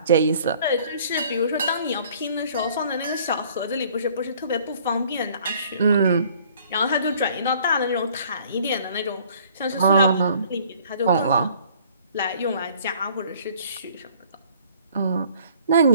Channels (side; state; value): both; inverted; correlation -0.57